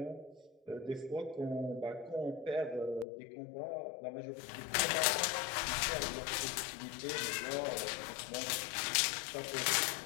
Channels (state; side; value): drops out; right; at 3.1 s